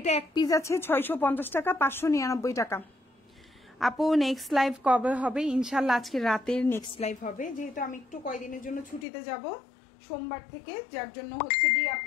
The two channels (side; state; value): right; drops out; at 9.1 s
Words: এক পিস আছে, 650 টাকা, 599 টাকা। আপু নেক্সট লাইভ কবে হবে? ইনশাল্লাহ আজকে রাতের নেক্সট লাইভ হবে, যেহেতু আমি একটু কয়দিনের জন্য ছুটিতে যাব সোমবার থেকে, যার জন্য হচ্ছে কি